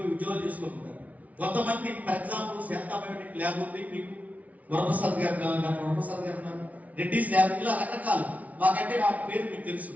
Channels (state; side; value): late; left; 0.070 ms